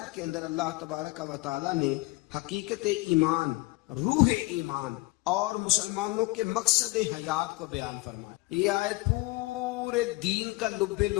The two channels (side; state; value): right; quieter; 22.4 dB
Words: کے اندر اللہ تبارک و تعالیٰ نے حقیقت ایمان روح ایمان اور مسلمانوں کے مقصد حیات کو بیان فرمایا. یہ آیت پورے دین کا لب